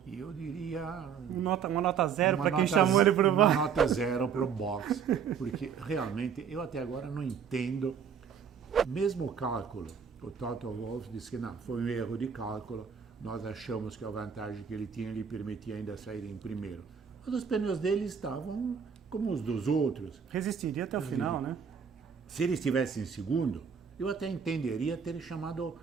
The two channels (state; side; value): quieter; left; 7.0 dB